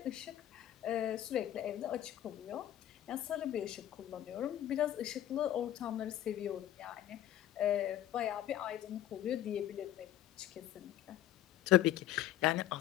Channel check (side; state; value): right; quieter; 12.5 dB